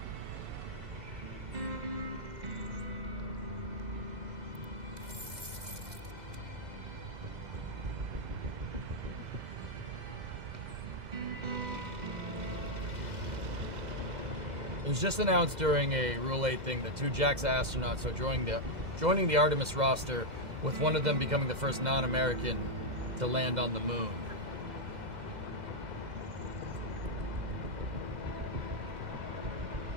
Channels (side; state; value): left; late; 2.0 ms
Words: It was just announced during a Rule 8 thing that 2 JAXA astronauts are joining the Artemis roster, with one of them becoming the first non-American to land on the moon.